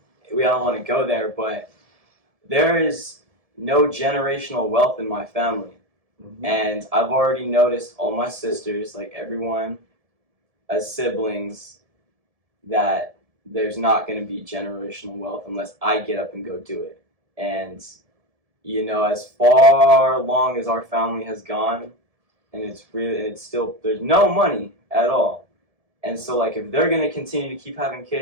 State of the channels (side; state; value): left; late; 1.7 ms